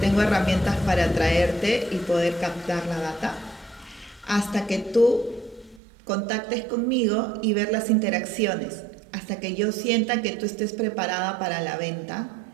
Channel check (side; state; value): left; drops out; at 5.8 s